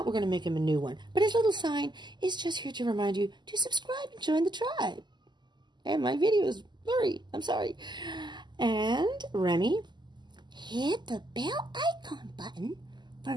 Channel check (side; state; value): left; late; 0.21 ms